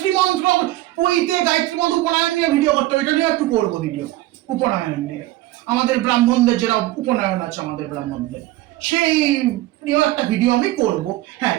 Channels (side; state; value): left; quieter; 16.8 dB